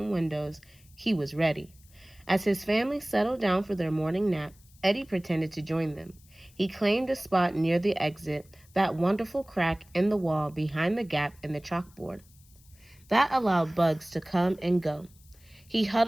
windows, he was ready. As his family settled down for their morning nap, Eddie pretended to join them. He claimed a spot near the exit, that wonderful crack in the wall behind the gap in the chalkboard. That allowed bugs to come and go. He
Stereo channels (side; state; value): left; noise; hiss, 28 dB below the sound